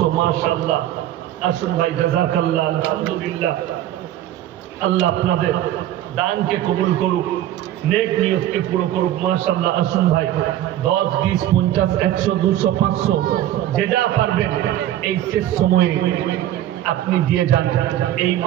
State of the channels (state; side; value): quieter; left; 12.7 dB